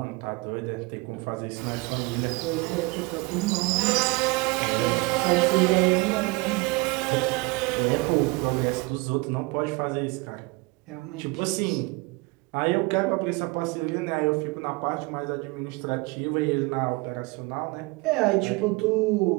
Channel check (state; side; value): quieter; left; 25.7 dB